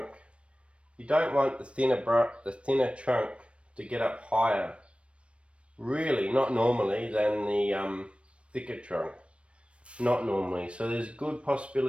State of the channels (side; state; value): left; late; 0.060 ms